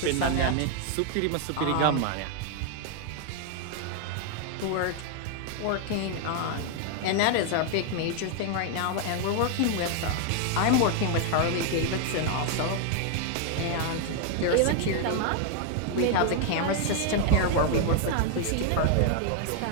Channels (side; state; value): both; different; correlation 0.00